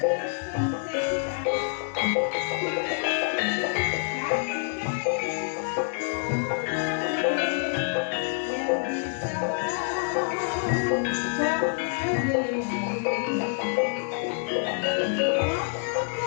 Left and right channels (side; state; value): right; silent; 57 dB below the other